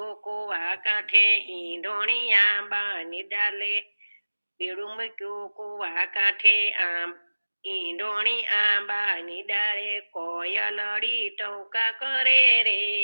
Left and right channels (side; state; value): both; inverted; correlation -1.00